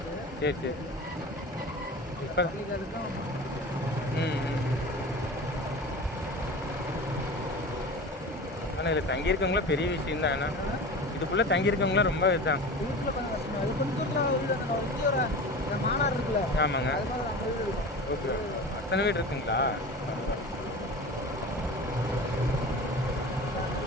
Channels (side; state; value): both; normal; correlation 0.34